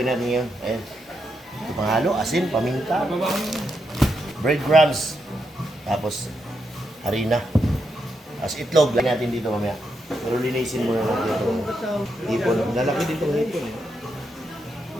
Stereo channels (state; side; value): normal; both; correlation 0.83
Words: natin yun. Ayan. Panghalo, asin, paminta, breadcrumbs, tapos harina. As itlog, lagyan natin dito mamaya. Pero linisin muna natin ito. Hipon. Lalaki dito ng hipon.